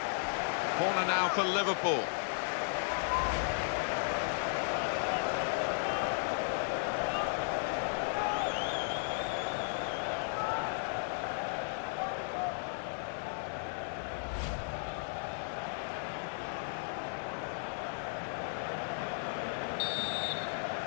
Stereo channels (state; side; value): silent; right; 54 dB below the other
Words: Corner now for Liverpool.